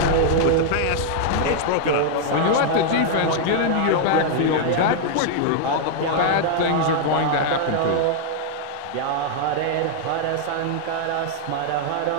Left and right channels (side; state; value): both; different; correlation 0.00